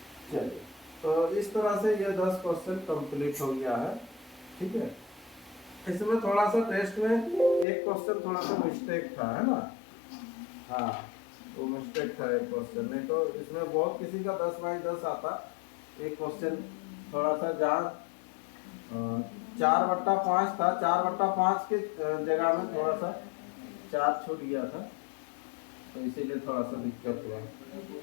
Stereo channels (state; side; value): drops out; right; at 7.7 s